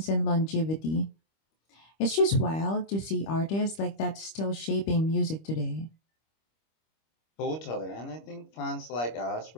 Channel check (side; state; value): right; late; 25 ms